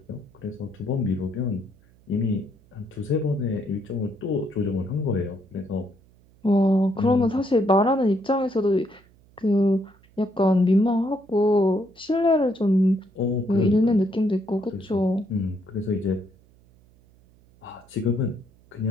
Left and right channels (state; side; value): noise; right; hum, 29 dB below the sound